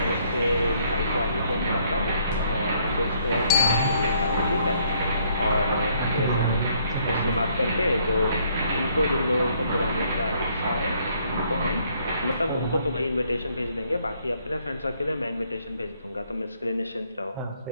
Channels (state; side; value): inverted; both; correlation -0.66